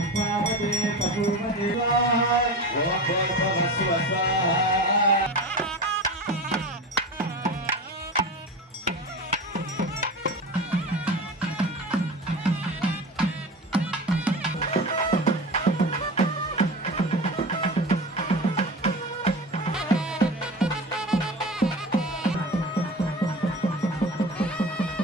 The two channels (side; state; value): both; normal; correlation 0.30